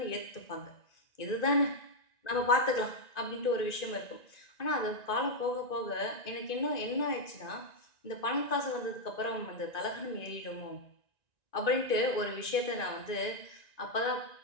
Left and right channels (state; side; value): late; right; 1.9 ms